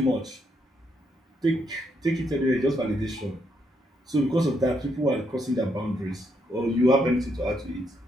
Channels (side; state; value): both; normal; correlation 0.76